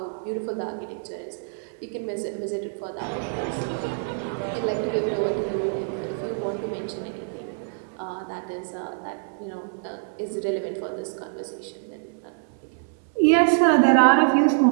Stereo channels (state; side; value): silent; left; 61 dB below the other